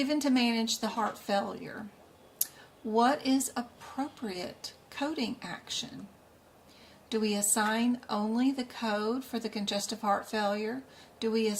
to manage the heart failure. What is appropriate coding action? Do we assign only the code for the congestive heart failure? Do we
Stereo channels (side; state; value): both; identical; correlation 1.00